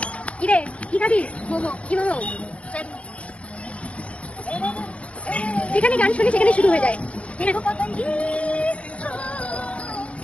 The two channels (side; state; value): right; late; 0.063 ms